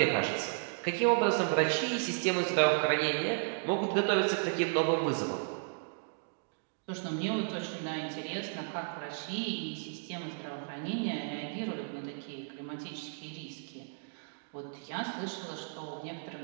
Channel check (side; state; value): left; silent; digital silence